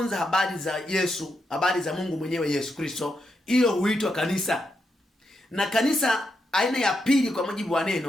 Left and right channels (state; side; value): normal; both; correlation 0.83